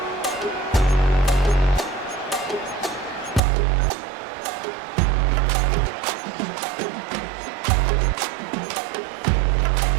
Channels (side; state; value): left; drops out; at 3.4 s